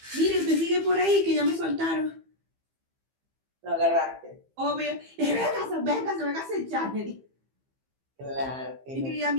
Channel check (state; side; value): late; left; 15 ms